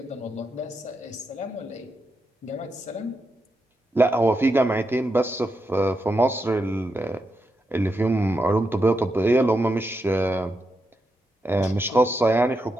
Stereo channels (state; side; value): normal; both; correlation 0.84